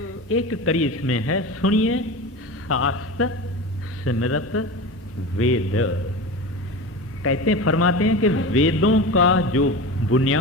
एक कड़ी इसमें है, सुनिए शास्त्र सिमरत वेद। कहते हैं, फरमाते हैं कि वेदों का जो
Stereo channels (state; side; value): normal; both; correlation 0.29